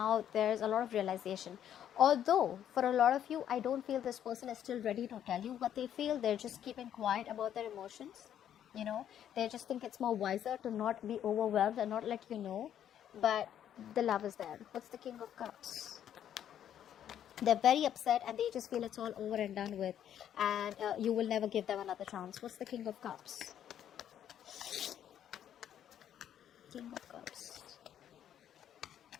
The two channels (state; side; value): quieter; right; 10.1 dB